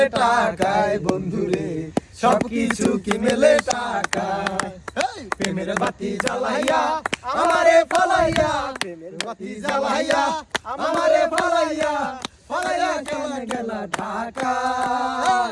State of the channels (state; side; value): identical; both; correlation 1.00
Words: টাকায় বন্ধুরে, সবকিছু কি মেলে টাকায়। প্রেমের বাতি জ্বালাইয়া আমারে ফালাইয়া, প্রেমের বাতি জ্বালাইয়া আমারে ফালাইয়া, ফালাইয়া কেন গেলা